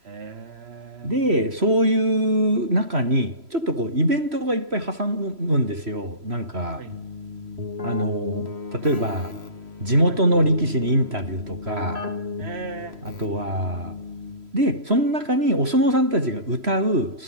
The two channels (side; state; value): left; late; 3.0 ms